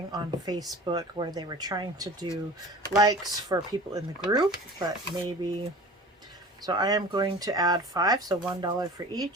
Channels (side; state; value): both; normal; correlation 0.39